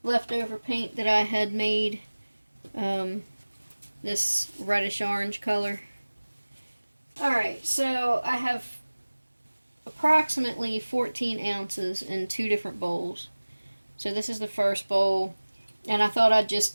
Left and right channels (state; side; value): inverted; both; correlation -1.00